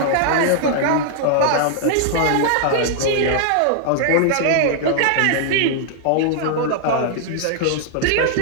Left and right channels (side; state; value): both; different; correlation -0.01